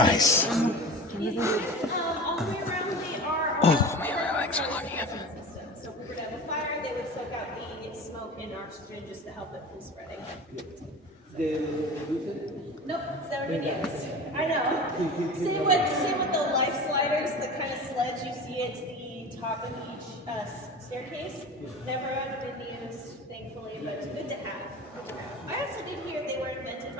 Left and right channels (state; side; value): normal; both; correlation 0.34